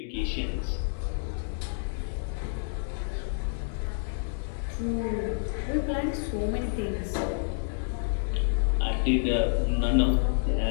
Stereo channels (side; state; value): right; silent; digital silence